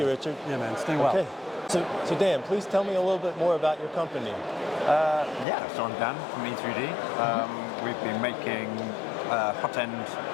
Ken. Richard. Yeah, man. Stay well. Okay. So Dan, please tell me a little bit more about your company. So I'm Dan from E3D. We've been making hot end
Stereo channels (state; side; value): drops out; right; at 5.5 s